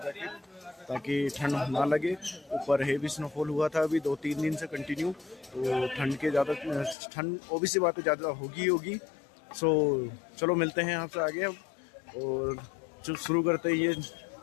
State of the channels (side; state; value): right; drops out; at 7.0 s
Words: ताकि ठंड ना लगे। ऊपर हेवी स्नोफॉल हुआ था अभी 2-3 दिन से कंटिन्यू, तो ठंड ओबीसी बात है ज़्यादा होगी। सो चलो मिलते हैं आपसे आगे अब, और शुरू करते हैं ये